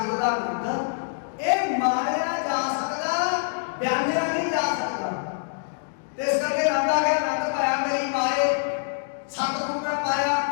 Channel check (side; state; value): right; silent; digital silence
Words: का आनंद ये मारिया जा सकता बयानिया नहीं जा सकता। इस करके नंदा गया नंद पाया मेरी माए सतगुरु मैं पाया